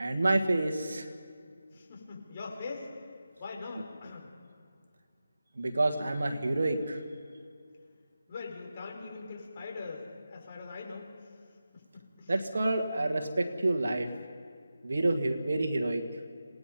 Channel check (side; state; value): both; inverted; correlation -0.93